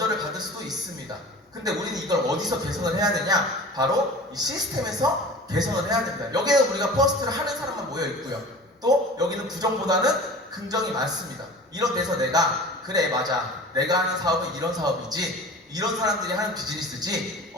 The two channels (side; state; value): both; normal; correlation 0.39